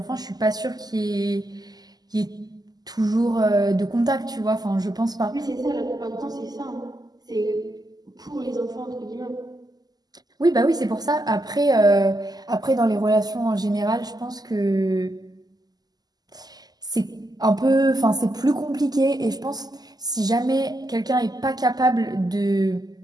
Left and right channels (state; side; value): late; left; 0.19 ms